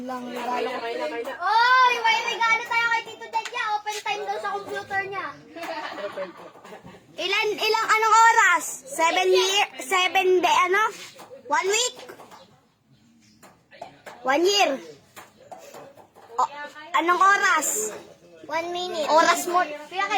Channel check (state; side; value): identical; both; correlation 1.00